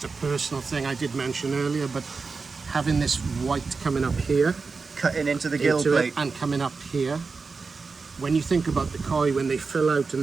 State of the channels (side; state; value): left; quieter; 4.5 dB